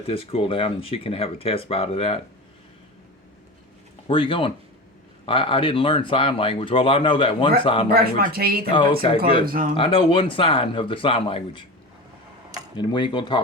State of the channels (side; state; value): both; normal; correlation 0.27